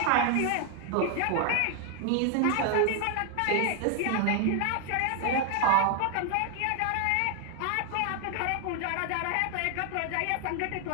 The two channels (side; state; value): both; different; correlation 0.00